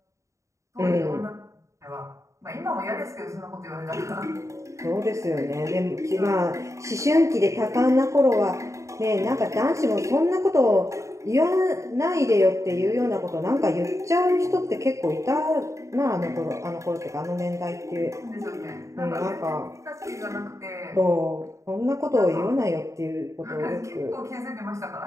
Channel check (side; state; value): left; late; 0.15 ms